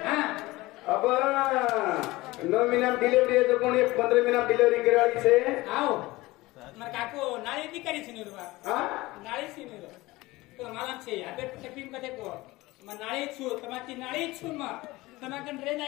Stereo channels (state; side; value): quieter; right; 20.0 dB